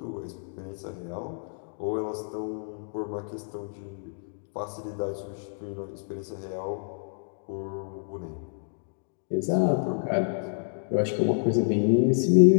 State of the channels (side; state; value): right; silent; digital silence